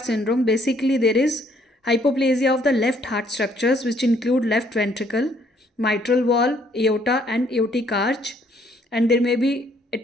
syndrome. Basically, there is hypoplasia of the left heart structures, which include left ventricle, mitral wall, aorta, and aortic arch, and there may be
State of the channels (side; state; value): both; normal; correlation 0.65